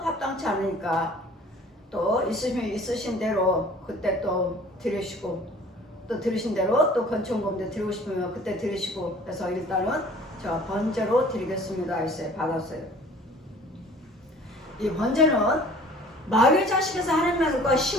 않으니까 또 있으신 대로 그때 또 드리시고 또 들으신 대로 또 건축금도 드리고 싶으면 그때 드리시고 그래서 일단은 제가 번제로 드리겠습니다 했어요. 받았어요. 이 번제는 마귀의 자식에서 하나님과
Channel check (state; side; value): normal; both; correlation 0.49